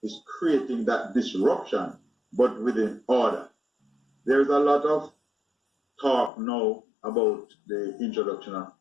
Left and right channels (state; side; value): drops out; right; at 6.3 s